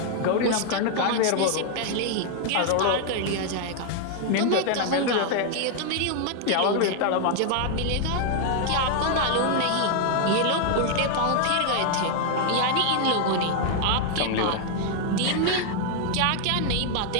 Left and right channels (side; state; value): both; different; correlation 0.00